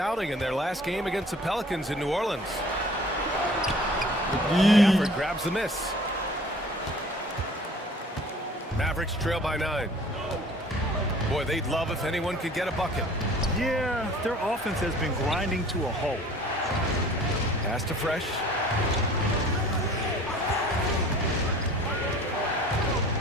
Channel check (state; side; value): normal; both; correlation 0.48